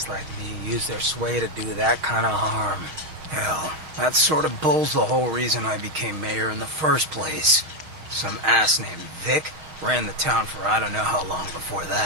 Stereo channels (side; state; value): left; late; 6.4 ms